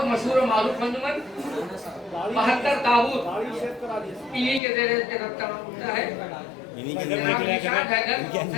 मशहूर और मारूफ अंजुमन। 72 ताबूत इन्हीं के ज़रिए से होता है।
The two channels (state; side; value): drops out; right; at 4.6 s